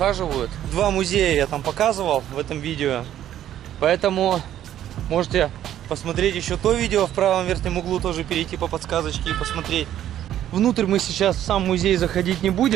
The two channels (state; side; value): quieter; left; 11.6 dB